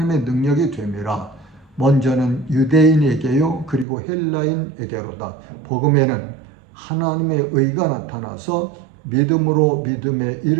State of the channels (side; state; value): left; drops out; at 3.9 s